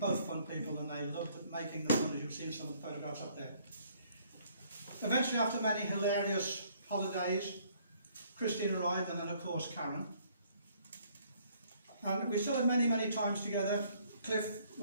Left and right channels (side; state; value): both; inverted; correlation -0.63